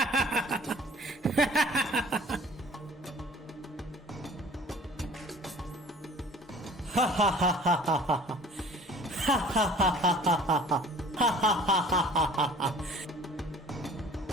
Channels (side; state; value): both; normal; correlation 0.49